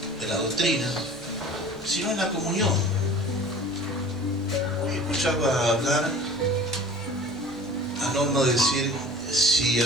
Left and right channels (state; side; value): normal; both; correlation 0.44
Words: en la doctrina, sino en la comunión. Escuchaba hablar a Norma decir, si